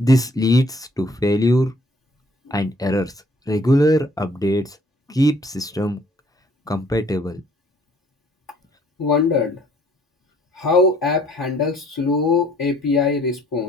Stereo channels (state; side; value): normal; both; correlation 0.60